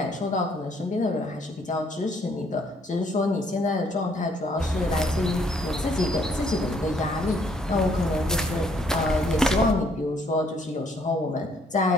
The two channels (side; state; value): both; normal; correlation 0.66